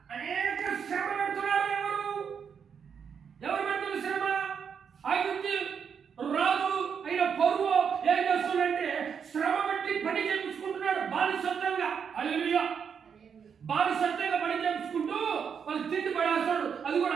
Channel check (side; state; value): left; quieter; 7.0 dB